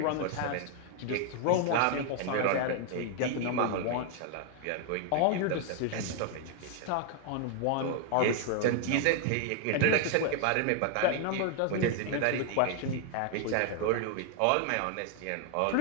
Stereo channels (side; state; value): both; different; correlation 0.00